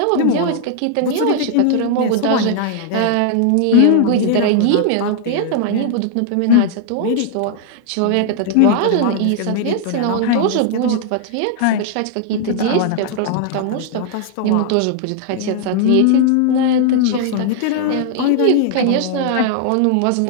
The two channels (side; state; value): both; different; correlation 0.00